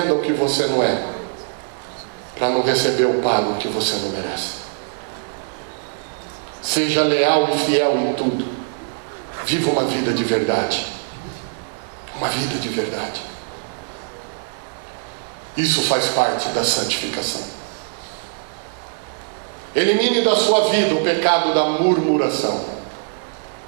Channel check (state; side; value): silent; left; 64 dB below the other